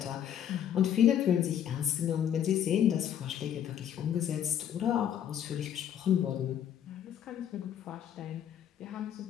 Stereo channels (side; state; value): right; quieter; 9.8 dB